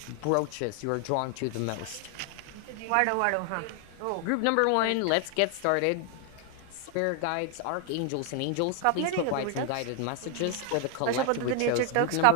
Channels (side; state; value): both; different; correlation 0.00